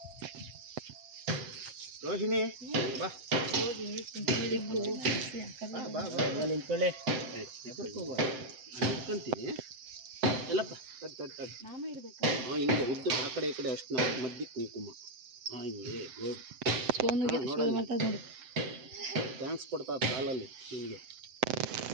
ರೋಹಿಣಿ ಬಾ ಬಾ ಬಾ ನಿಂತ್ಕೊಳ್ಳಿ. ನಿಂತ್ಕೊಂತೀನಿ ಎಲ್ಲಪ್ಪ ಹಿಂಗೆ ಉದ್ದು ಆ ಕಡೆ ಈ ಕಡೆ ಅಷ್ಟು ನಾವು ಮಧ್ಯೆ ಕುಂಕುಮ ಹಿಂಗೆ ಗುಡ್ ನೋಡಿ. ಥ್ಯಾಂಕ್ಸ್ ಕೊಡ್ತಾ ಕಾಲಲ್ಲಿ ನಿಮಗೆ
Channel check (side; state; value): left; late; 7.8 ms